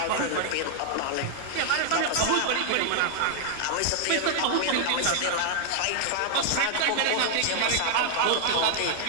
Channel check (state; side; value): different; both; correlation 0.00